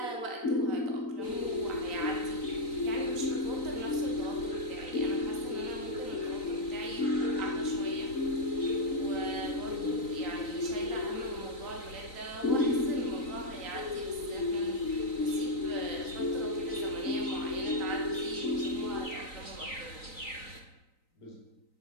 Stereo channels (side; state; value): right; late; 3.9 ms